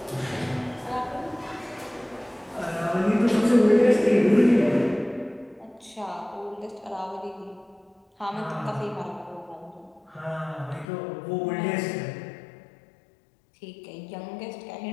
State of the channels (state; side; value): drops out; right; at 10.9 s